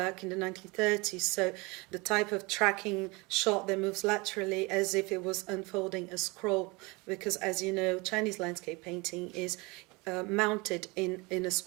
in the 1930s. So the type of tracking shot that moves laterally as if it was unfolding a scroll, because as you know, Chinese landscape painting is mounted in a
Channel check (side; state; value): left; quieter; 26.0 dB